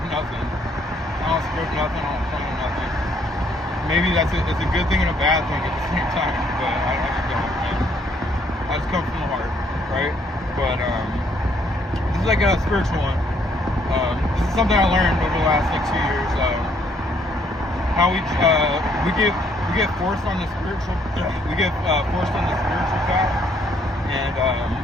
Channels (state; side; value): normal; both; correlation 0.67